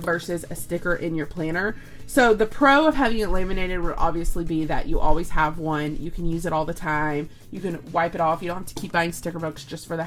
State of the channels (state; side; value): identical; both; correlation 1.00